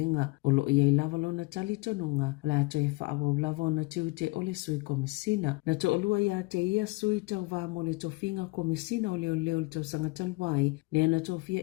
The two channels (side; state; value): right; quieter; 24.8 dB